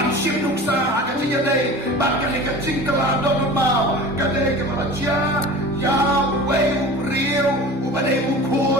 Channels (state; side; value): normal; both; correlation 0.38